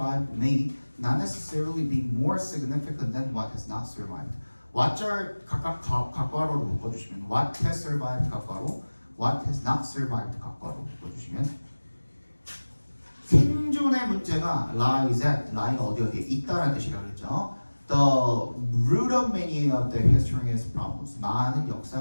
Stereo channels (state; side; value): inverted; both; correlation -1.00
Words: may not necessarily be more significant than what has not survived. what절 각각 각과로로 묶어주시면 what has survived 각과로, what has not survived 각과로 묶어주시면 생존의 문제가 lies at, lie가 어디에 있다라는 뜻이라고 했죠. The root of many of the history's problems, 많은